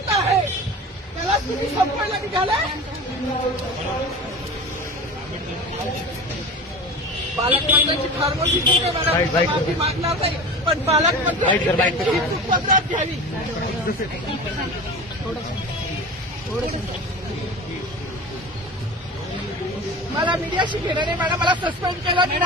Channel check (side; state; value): both; normal; correlation 0.33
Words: आहे त्याला तुम्ही संपवायला निघालाय. पालकमंत्र्यांची फार मोठी चूक आहे मॅडम, माफी मागणार नाही, पण पालकमंत्र्यांची ही चूक पदरात घ्यावी. मला मीडियाशी घेणं नाही मॅडम, मला सस्पेंड केलं, मी